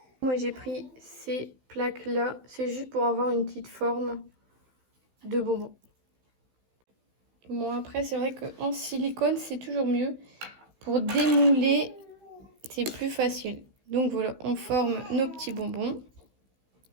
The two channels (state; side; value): late; left; 15 ms